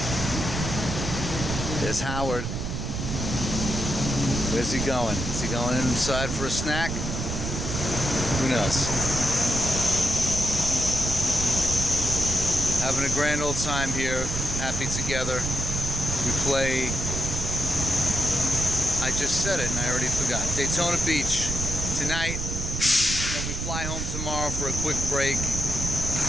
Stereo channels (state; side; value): noise; right; rumble, 3 dB below the sound